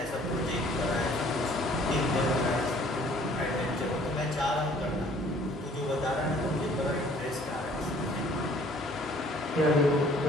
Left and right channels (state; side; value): normal; both; correlation 0.56